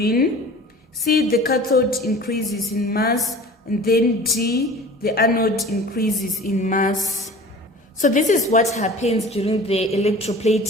C, the cathode increases in mass. And then D, the anode increases in mass. So this is what happens during the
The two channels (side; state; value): both; normal; correlation 0.42